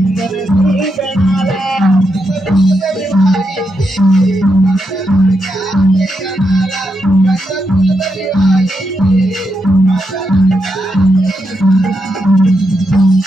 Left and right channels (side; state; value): both; normal; correlation 0.83